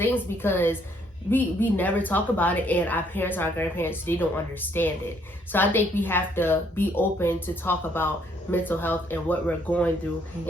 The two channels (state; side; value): normal; both; correlation 0.67